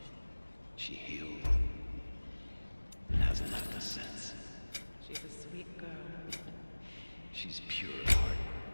She healed and hasn't left us since. She's a sweet girl. She's pure at heart.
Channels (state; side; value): inverted; both; correlation -1.00